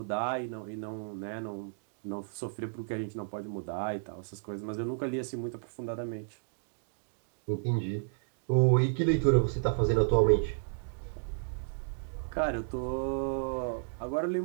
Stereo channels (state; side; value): silent; left; digital silence